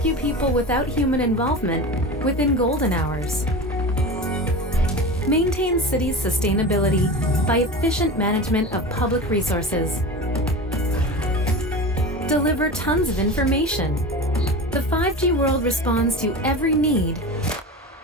people without human involvement within golden hours. Maintain cities' sustainability by efficient management of public resources. Deliver tons of information. The 5G world responds to every need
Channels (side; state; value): both; normal; correlation 0.29